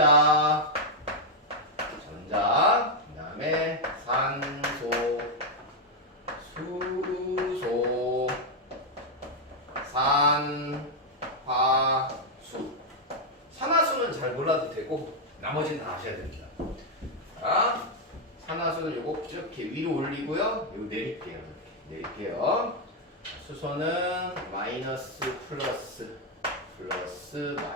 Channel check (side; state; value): both; normal; correlation 0.00